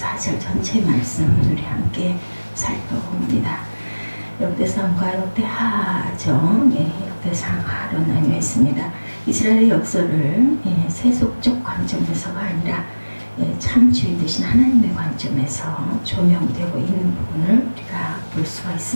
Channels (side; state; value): both; inverted; correlation -1.00